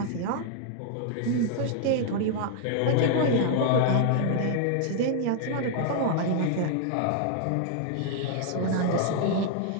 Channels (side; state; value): both; different; correlation 0.00